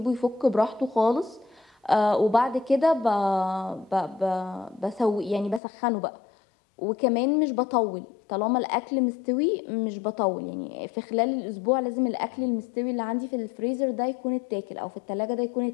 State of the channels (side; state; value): right; drops out; at 5.6 s